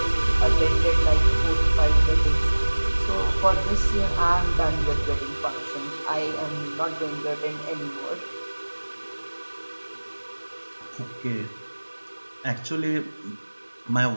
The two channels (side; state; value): both; inverted; correlation -1.00